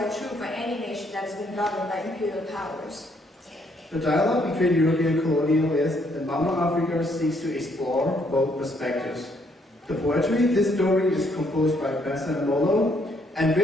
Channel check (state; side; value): normal; both; correlation 0.70